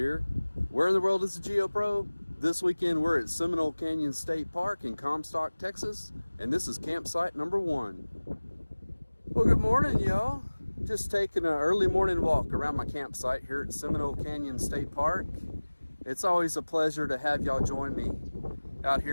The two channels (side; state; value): both; inverted; correlation -1.00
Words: Where in the world is the GeoPro? This weekend, we're at Seminole Canyon State Park in Comstock, Texas, and this is campsite number 1. Well, good morning, y'all. Just taking an early morning walk around my campsite here at Seminole Canyon State Park. It's always a pleasure to have y'all join me out